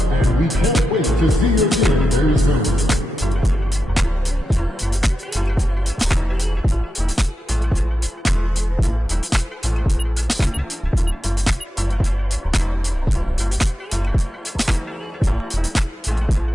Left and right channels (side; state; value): both; normal; correlation 0.90